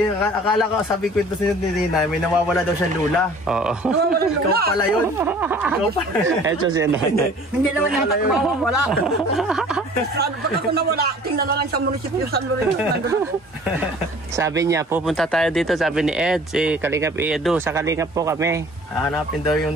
akala ko sabi ko ito sa inyo ni Tinay, may nawawala daw siyang lula. Oo. Nawawalan Ikaw lula. pala yun. Ikaw pala. Ito si nanay. Hindi naman yata ko mawawala. Pag ako nawala, tingnan na lang sa munisipyo San Lorenzo. Nandun ako. Sabi niya, pupunta tayo dito, sabi ni Ed, si Kalingap Edu, sa Kalingap po kami. Hanapin daw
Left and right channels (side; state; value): both; normal; correlation 0.49